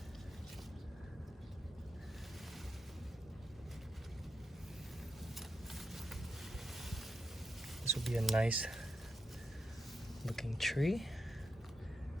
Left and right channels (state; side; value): normal; both; correlation 0.86